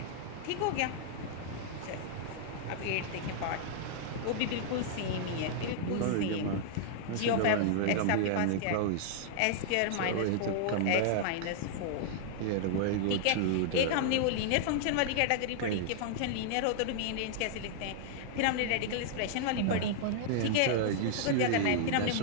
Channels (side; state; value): both; different; correlation -0.01